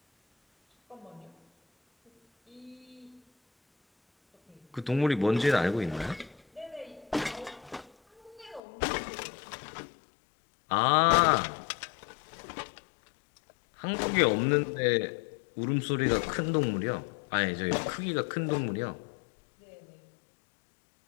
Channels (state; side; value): drops out; right; at 8.6 s